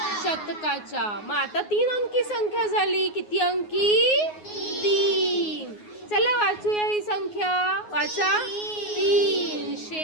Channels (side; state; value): right; late; 9.5 ms